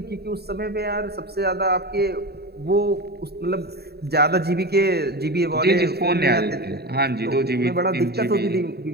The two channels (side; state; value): left; late; 0.47 ms